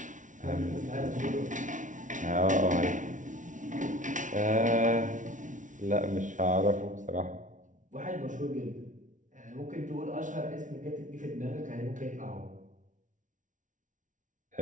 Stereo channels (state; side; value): late; left; 0.37 ms